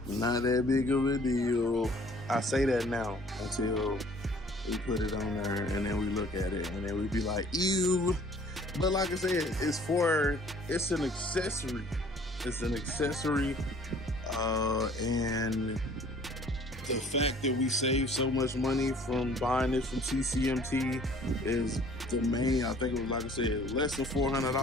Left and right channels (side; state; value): both; normal; correlation 0.54